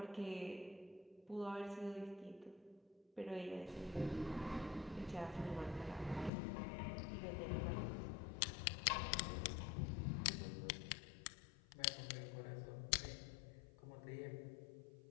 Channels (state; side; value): drops out; right; at 6.3 s